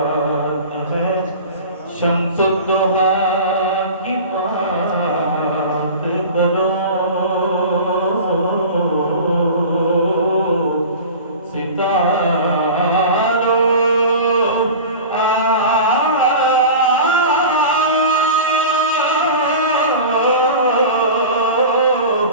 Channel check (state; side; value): inverted; both; correlation -0.35